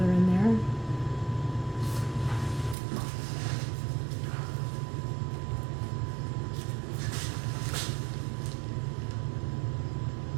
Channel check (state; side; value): drops out; left; at 2.8 s